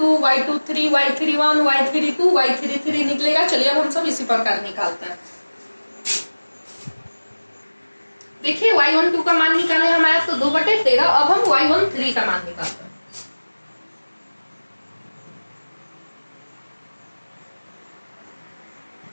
y23 y31 y32 y33 निकलेगा। चलिए अब हम सब इसी प्रकार निकालते हैं। देखिए y12 का मान निकाले हमारा तो 2/13। अब हम y13 का मान निकालते हैं।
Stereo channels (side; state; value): both; inverted; correlation -1.00